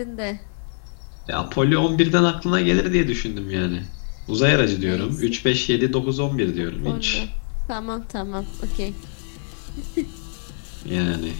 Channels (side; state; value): right; silent; 56 dB below the other